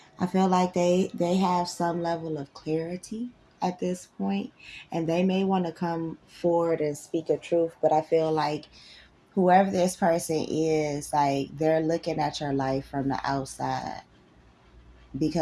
I feel like they have some level of clarity at this point, and they may want to come forward and speak a truth, but I feel like whoever this person is, like they're looking at your life from the outside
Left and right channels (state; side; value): identical; both; correlation 1.00